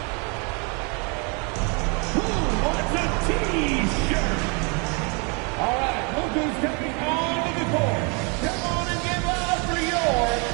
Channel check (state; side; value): quieter; left; 33.3 dB